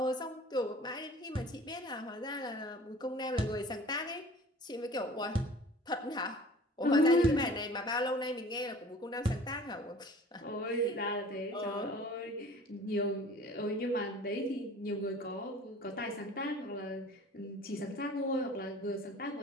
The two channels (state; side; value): normal; both; correlation 0.45